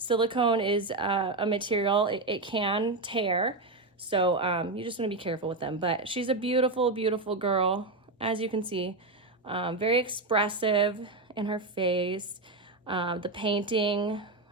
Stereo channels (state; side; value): quieter; left; 3.3 dB